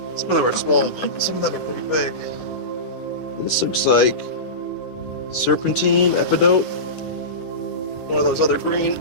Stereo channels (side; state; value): right; late; 9.9 ms